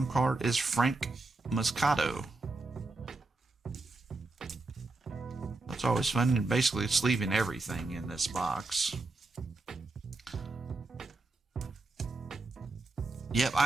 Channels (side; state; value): left; quieter; 3.3 dB